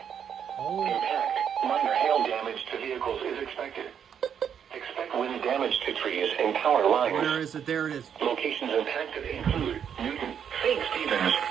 Impact, minor hail damage to vehicles is expected. Expect wind damage to trees and power lines. Where is it? There it is. Locations impacted include Newton, St. Stevens,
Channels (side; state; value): left; quieter; 8.2 dB